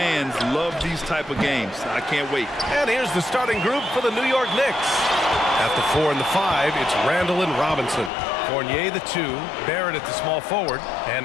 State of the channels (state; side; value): drops out; right; at 8.1 s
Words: love these type of games. I can't wait. And here's the starting group for the New York Knicks. At the 4 and the 5, it's Randall and Robinson. Fournier, the 2, Barrett at the small forward,